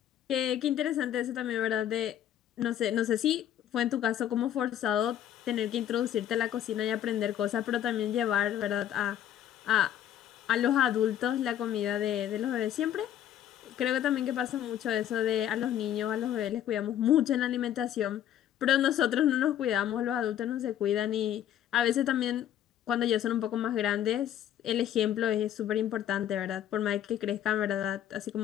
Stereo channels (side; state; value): right; quieter; 10.8 dB